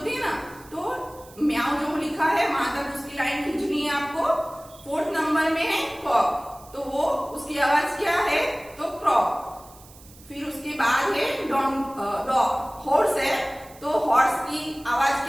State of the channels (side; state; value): right; noise; hiss, 23 dB below the sound